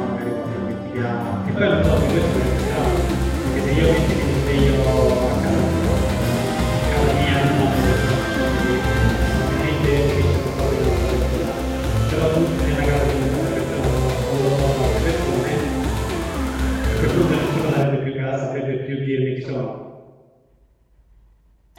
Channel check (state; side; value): identical; both; correlation 1.00